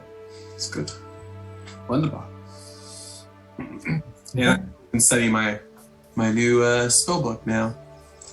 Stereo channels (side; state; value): both; identical; correlation 1.00